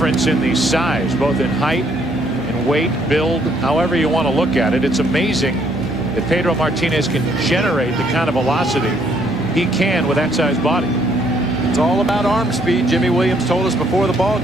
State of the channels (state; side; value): normal; both; correlation 0.67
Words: in the size, both in height and weight, build, however you want to look at it. It's amazing that Pedro Martinez can generate the kind of velocity he can with that size body. It's all about arm speed. Jimmy Williams told us before the ball